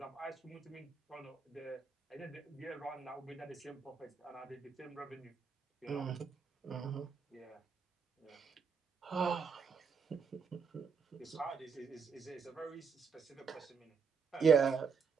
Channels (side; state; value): left; quieter; 5.7 dB